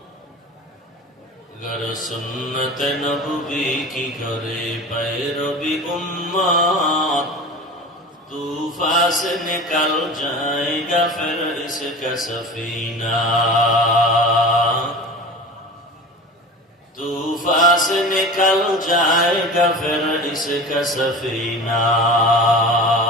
گر سنت نبوی کی کرے پیروی امت طوفان سے نکل جائے گا پھر اس کا سفینہ طوفان سے نکل جائے گا پھر اس کا سفینہ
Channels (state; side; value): normal; both; correlation 0.34